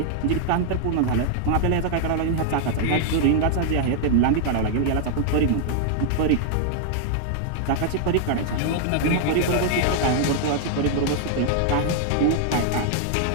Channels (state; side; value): different; both; correlation -0.01